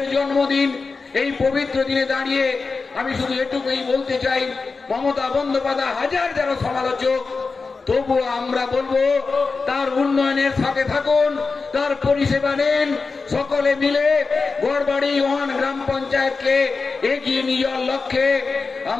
জন্মদিন, এই পবিত্র দিনে দাঁড়িয়ে আমি শুধু এটুকুই বলতে চাই, মমতা বন্দ্যোপাধ্যায় হাজার যারা সমালোচক, তবুও আমরা বলবো তার উন্নয়নের সাথে থাকুন, তার পরিষেবা নেন, সকলে মিলে গড়বাড়ি 1 গ্রাম পঞ্চায়েতকে এগিয়ে নিয়ে যাওয়ার লক্ষ্যে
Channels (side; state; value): right; quieter; 4.3 dB